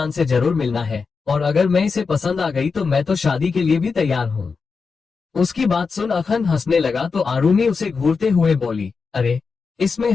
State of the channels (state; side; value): quieter; right; 5.0 dB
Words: से जरूर मिलना है, और अगर मैं इसे पसंद आ गई तो मैं तो शादी के लिए भी तैयार हूँ। उसकी बात सुन अखंड हंसने लगा तो आरुमी उसे घूरते हुए बोली, अरे, इसमें